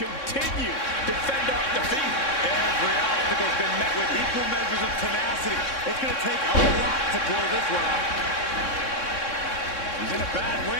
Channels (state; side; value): late; right; 3.6 ms